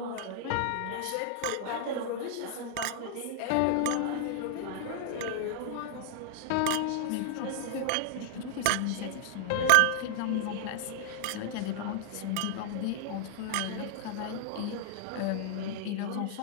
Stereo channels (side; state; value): both; different; correlation -0.01